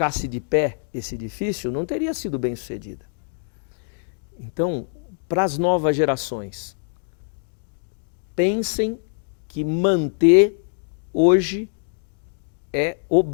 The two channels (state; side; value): silent; right; digital silence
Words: de pé esse edifício, não teria sido bem sucedida. Então, para as novas gerações, pensem que manter hoje é